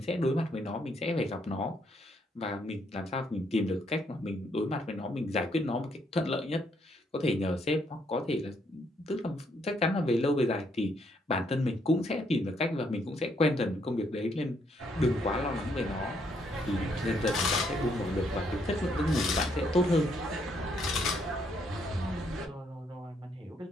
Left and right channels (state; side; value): normal; both; correlation 0.72